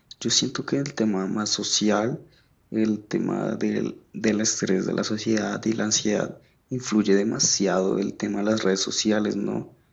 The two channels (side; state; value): both; identical; correlation 1.00